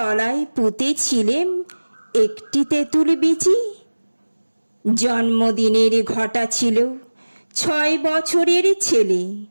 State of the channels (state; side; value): inverted; both; correlation -1.00